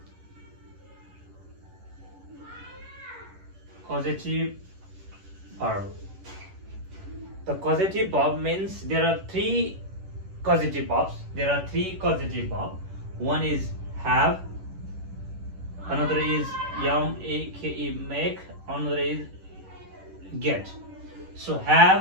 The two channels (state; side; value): late; left; 11 ms